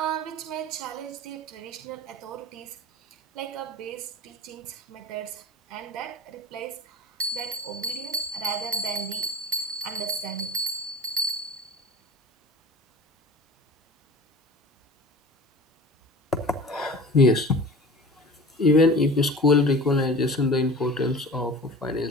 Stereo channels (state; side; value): normal; both; correlation 0.39